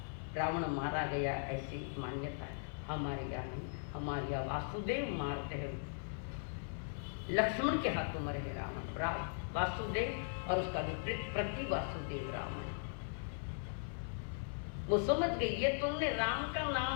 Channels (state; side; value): silent; right; 52 dB below the other